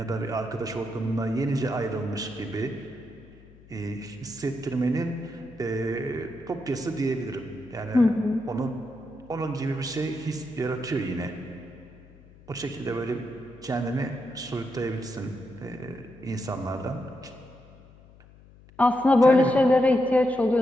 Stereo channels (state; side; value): noise; left; hum, 24 dB below the sound